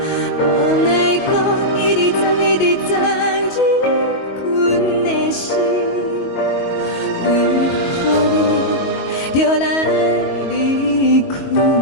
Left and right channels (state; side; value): late; right; 22 ms